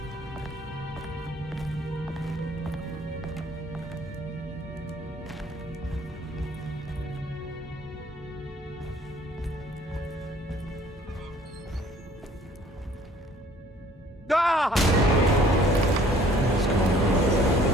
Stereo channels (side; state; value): both; normal; correlation 0.57